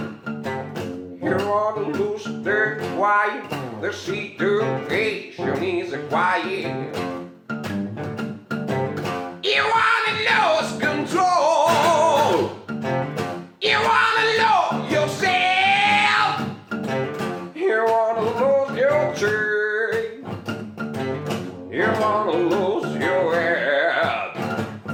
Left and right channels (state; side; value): identical; both; correlation 1.00